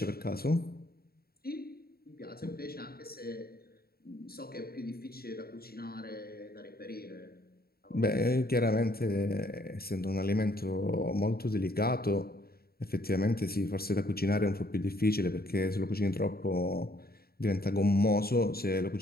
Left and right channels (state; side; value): late; right; 0.45 ms